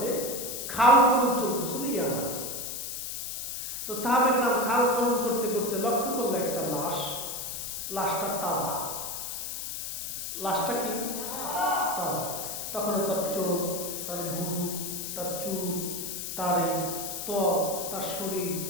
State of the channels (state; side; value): noise; left; hiss, 5 dB below the sound